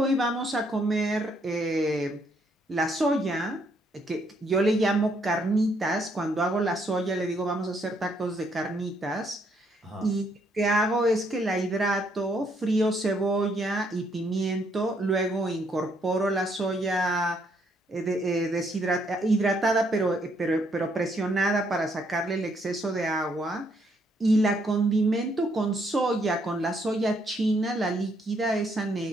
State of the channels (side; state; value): both; normal; correlation 0.71